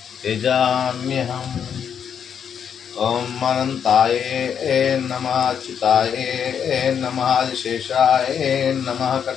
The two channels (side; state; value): right; quieter; 7.9 dB